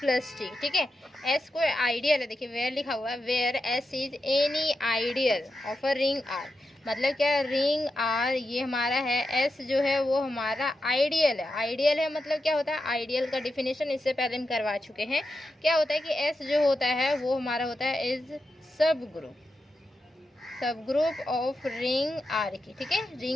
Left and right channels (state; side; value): normal; both; correlation 0.88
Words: T. ठीक है, एस कोई आइडियल है। देखिए वेयर लिखा हुआ है, where S is any ideal of a ring R. मतलब क्या, रिंग आर ये हमारा है, एस जो है वो हमारा आइडियल है। आइडियल है मतलब क्या होता है, आइडियल का डिफिनेशन इससे पहले हम करवा चुके हैं। क्या होता है कि एस जो होता है वो हमारा होता है इज सब ग्रुप ऑफ रिंग आर की। ठीक है,